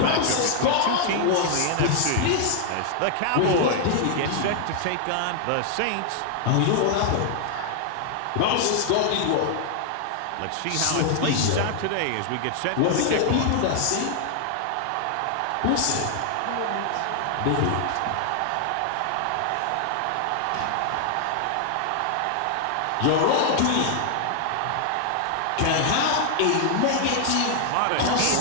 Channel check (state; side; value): different; both; correlation 0.00